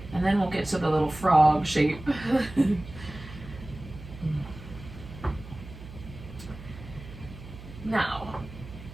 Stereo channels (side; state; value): right; noise; hum, 15 dB below the sound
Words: and then we'll get to the little frog shape. Now,